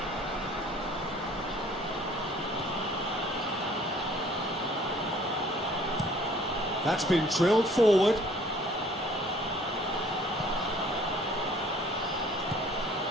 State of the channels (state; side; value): normal; both; correlation 0.55